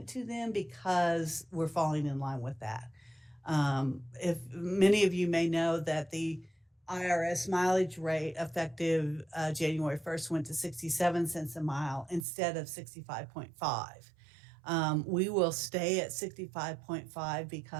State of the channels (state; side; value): drops out; left; at 12.2 s